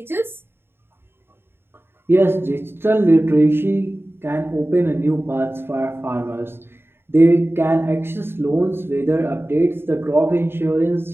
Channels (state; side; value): late; left; 0.11 ms